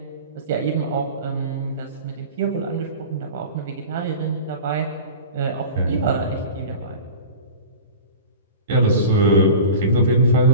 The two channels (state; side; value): inverted; both; correlation -0.36